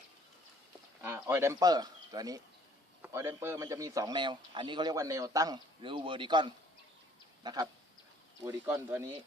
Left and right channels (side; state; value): both; normal; correlation 0.58